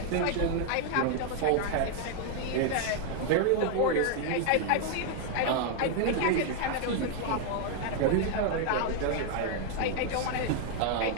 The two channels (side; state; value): both; different; correlation 0.00